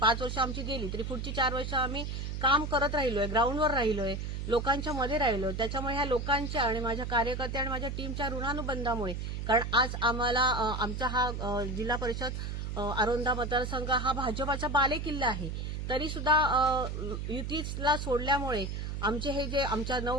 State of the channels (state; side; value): noise; right; hum, 4 dB below the sound